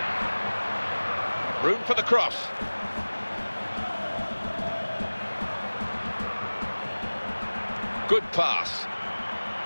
Room for the cross. Good pass.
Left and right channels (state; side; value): inverted; both; correlation -1.00